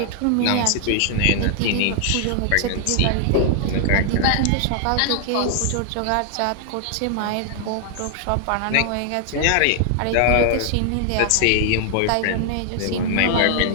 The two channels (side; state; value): both; different; correlation 0.00